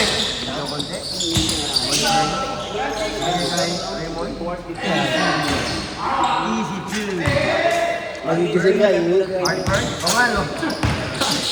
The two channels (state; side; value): identical; both; correlation 1.00